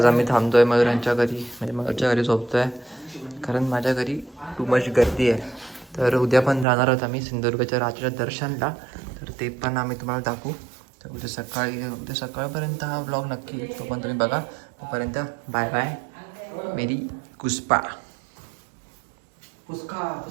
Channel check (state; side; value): drops out; left; at 6.7 s